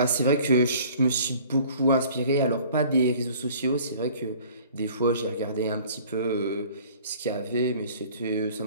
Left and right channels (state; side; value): inverted; both; correlation -0.50